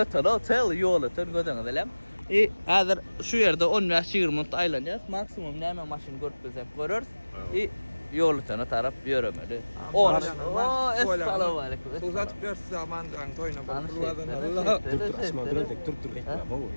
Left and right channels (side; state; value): both; inverted; correlation -1.00